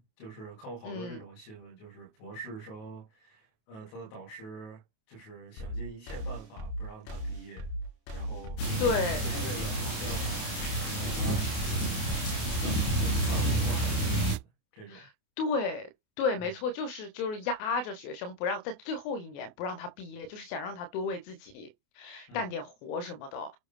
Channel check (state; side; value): late; right; 28 ms